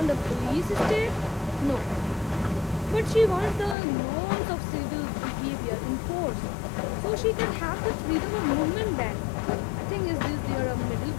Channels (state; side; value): drops out; right; at 3.8 s